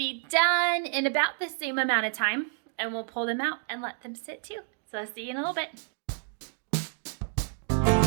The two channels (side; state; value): left; silent; 58 dB below the other